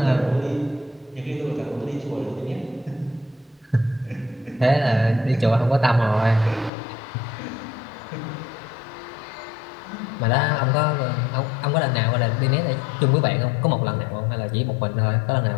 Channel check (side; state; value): right; drops out; at 6.7 s